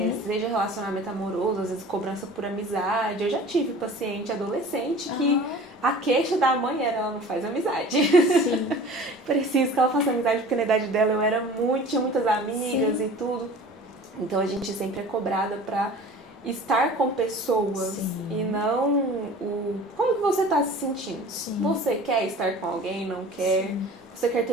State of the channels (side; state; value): both; normal; correlation 0.43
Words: Seja relacionamento amoroso, às vezes cobrança por amizade. Eu já tive paciente adolescente que a queixa da mãe era: ela não faz amizade. Sim. Preciso que ela faça amizade, porque na idade dela tinha muitas amigas e tudo. Então a gente sempre é cobrada pra estar com pessoas e não como que você tá se sentindo. Você quer estar com alguém, não quer? Você quer